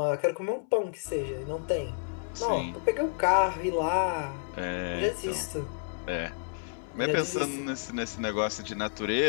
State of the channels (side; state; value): right; silent; 58 dB below the other